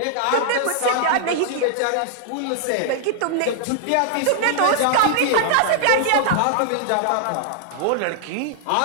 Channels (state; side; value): different; both; correlation -0.01